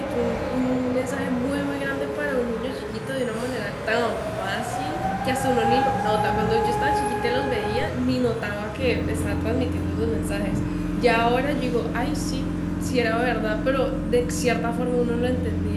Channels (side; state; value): both; identical; correlation 1.00